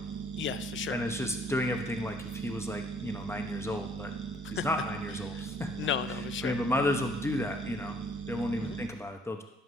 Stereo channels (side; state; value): both; normal; correlation 0.61